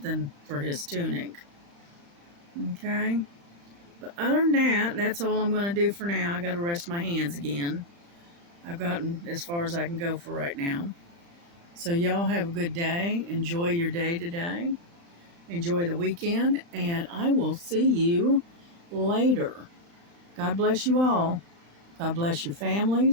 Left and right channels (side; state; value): left; late; 35 ms